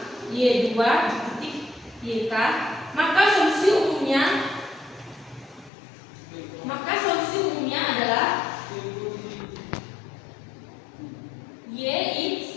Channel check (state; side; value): drops out; right; at 5.7 s